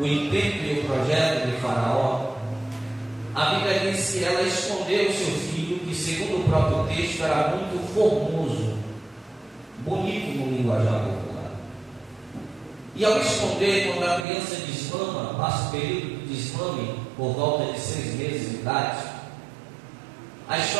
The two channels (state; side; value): drops out; left; at 14.2 s